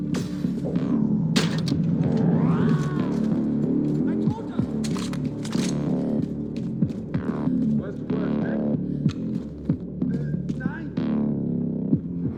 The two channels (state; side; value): noise; right; rumble, 29 dB below the sound